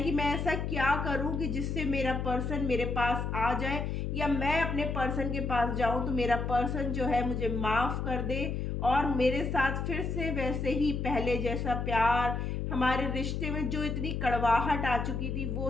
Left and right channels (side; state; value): left; noise; hum, 2 dB below the sound